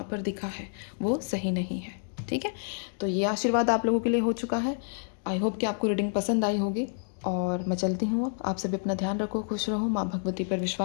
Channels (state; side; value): silent; right; digital silence